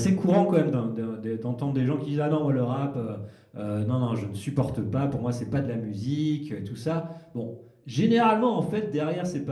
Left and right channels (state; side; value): identical; both; correlation 1.00